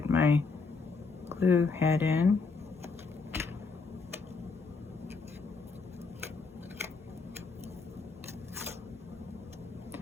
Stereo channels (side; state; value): right; quieter; 4.5 dB